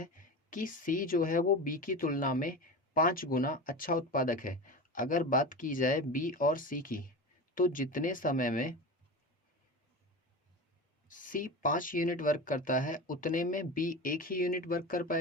कि सी जो है वो बी की तुलना में 5 गुना अच्छा उत्पादक है। अगर बात की जाए बी और सी की, तो जितने समय में सी 5 यूनिट वर्क करता है उतने में बी 1 ही यूनिट वर्क कर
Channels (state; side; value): normal; both; correlation 0.27